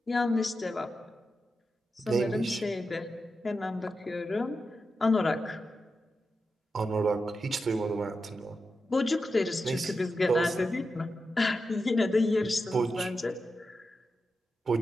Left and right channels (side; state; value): both; normal; correlation 0.89